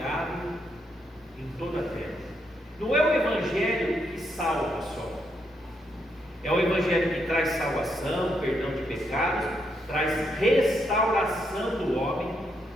em toda a terra. Não é o evangelho que salva só, é o evangelho que traz salvação, perdão de pecados, traz restauração do homem.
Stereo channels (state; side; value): normal; both; correlation 0.78